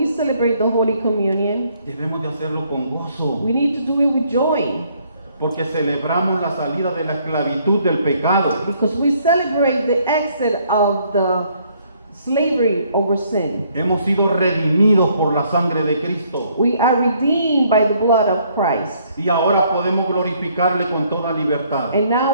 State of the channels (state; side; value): inverted; both; correlation -0.66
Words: celebrate the Holy Communion, debemos de hacerlo con gozo, we need to do it with joy, porque celebramos la salida de la esclavitud del pecado. because we celebrate the exit of the slavery over sin. Hemos sido redimidos por la sangre de Cristo. We are redeemed by the blood of Christ. Y ahora podemos glorificarle con toda libertad. And